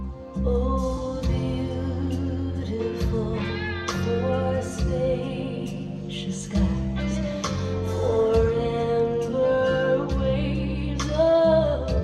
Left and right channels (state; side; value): identical; both; correlation 1.00